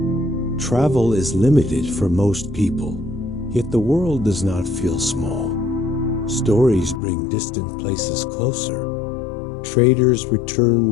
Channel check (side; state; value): right; drops out; at 7.0 s